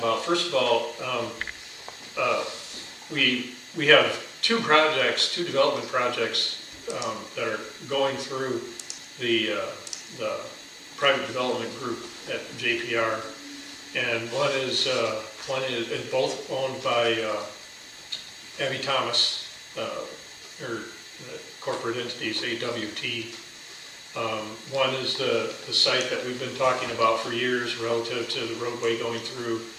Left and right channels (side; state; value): both; identical; correlation 1.00